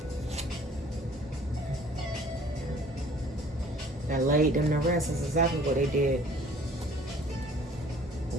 That laid them to rest. That's exactly what they did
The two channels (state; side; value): normal; both; correlation 0.53